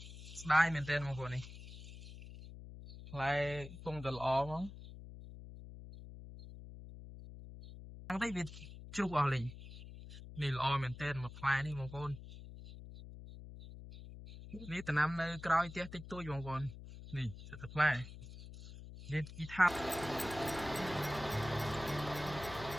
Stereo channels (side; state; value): left; noise; hum, 13 dB below the sound